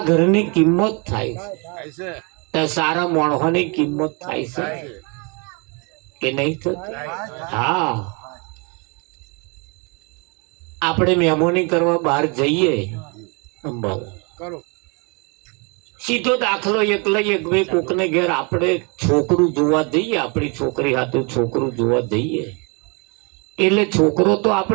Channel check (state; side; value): quieter; left; 32.3 dB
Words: ઘરની કિંમત થાય છે તો સારા માણસોની કિંમત થાય છે કે નહીં થતી? હા, આપણે મહેમાની કરવા બહાર જઈએ, સીધો દાખલો એક લઈએ, કોકને ઘેર આપણે છોકરું જોવા જઈએ, આપણી છોકરી હાથું છોકરું જોવા જઈએ, એટલે છોકરો તો